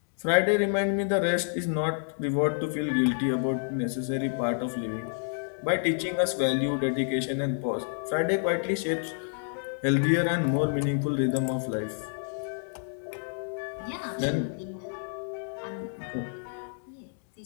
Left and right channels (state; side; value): silent; right; digital silence